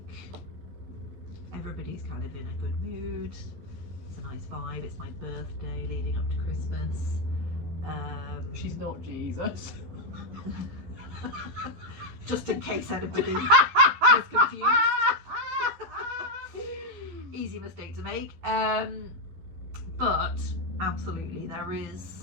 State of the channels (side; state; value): left; late; 13 ms